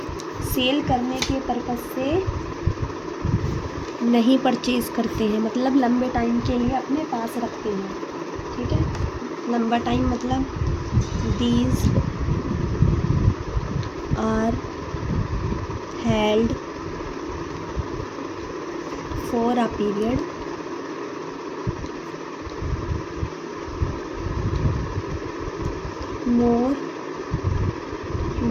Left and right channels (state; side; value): identical; both; correlation 1.00